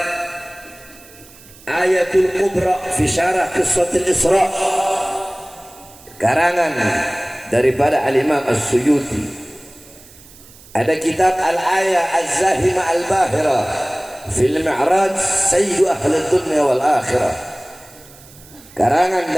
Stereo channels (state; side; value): noise; right; hiss, 23 dB below the sound